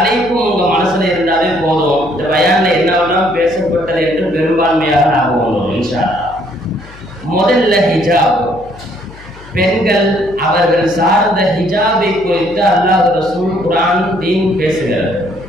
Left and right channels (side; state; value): left; noise; hum, 20 dB below the sound